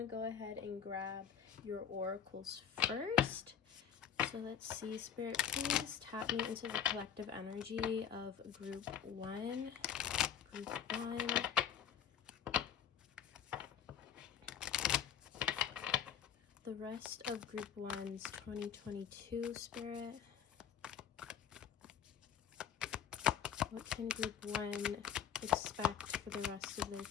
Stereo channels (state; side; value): quieter; right; 8.4 dB